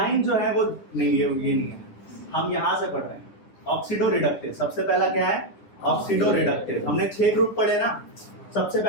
जो है वो नहीं, ये नहीं है, हम यहां से पढ़ रहे हैं। ऑक्सीडो रिडक्टेज, सबसे पहला क्या है, ऑक्सीडो रिडक्टेज। हमने 6 ग्रुप पढ़े ना, सबसे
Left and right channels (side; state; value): right; late; 9.9 ms